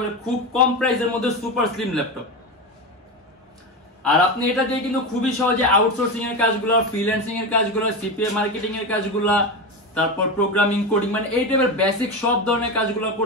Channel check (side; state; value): both; normal; correlation 0.19